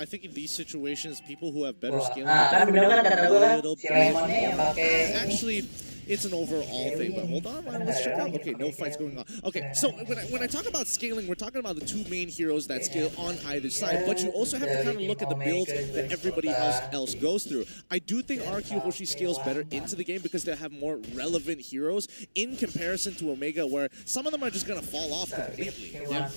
think in these situations, people who have better Wah, scaling kan bener kan kata gue kan little si bit. Lemonnya yang pakai Actually, it's an overall thing, but hold on, let's check out. Okay, no fights going on. Okay, so when I talk about scaling, we're talking about the two main heroes that scale on either side, but you also have to kind of look at the builds that everybody else goes through. I do think RRQ Hoshi scales better into the game because they have more relevant heroes in comparison to Omega, where some of them are just going to fall off completely.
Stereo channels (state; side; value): inverted; both; correlation -1.00